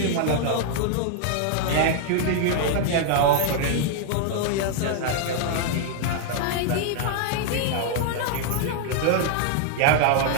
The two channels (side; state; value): both; different; correlation 0.00